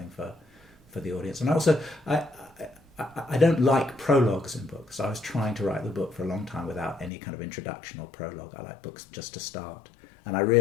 for the audience. And also, I don't like prologues in books. I was trying to write the book for a long time without any kind of introduction or prologue. I like books just to start. And I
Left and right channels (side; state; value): right; drops out; at 7.1 s